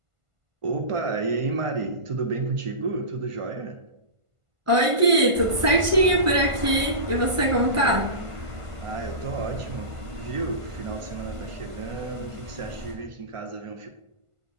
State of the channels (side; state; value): left; late; 1.5 ms